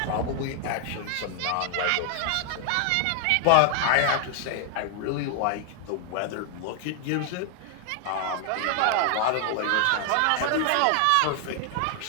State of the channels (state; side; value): different; both; correlation 0.00